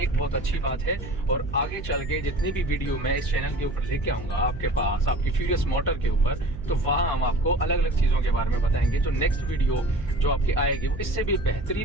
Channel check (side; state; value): right; noise; hum, 12 dB below the sound